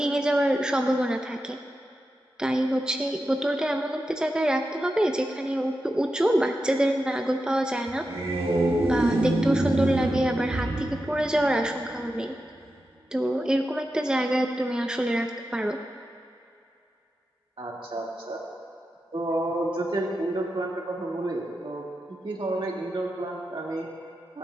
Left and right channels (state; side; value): normal; both; correlation 0.89